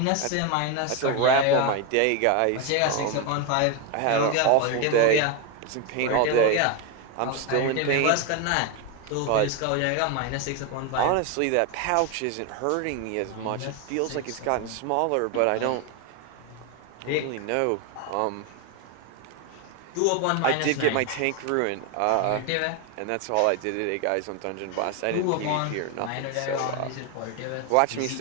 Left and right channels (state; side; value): different; both; correlation 0.02